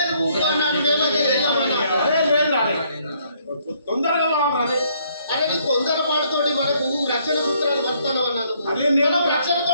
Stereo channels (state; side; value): inverted; both; correlation -0.67